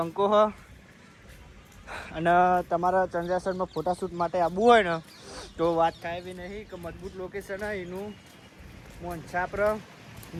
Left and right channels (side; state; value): both; identical; correlation 1.00